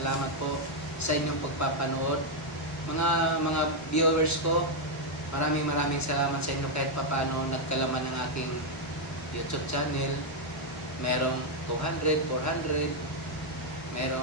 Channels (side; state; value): both; normal; correlation 0.00